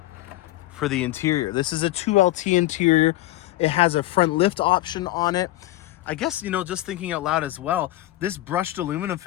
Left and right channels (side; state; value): right; quieter; 16.5 dB